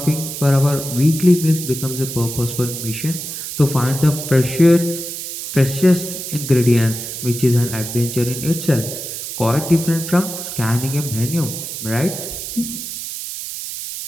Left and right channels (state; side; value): noise; right; hiss, 7 dB below the sound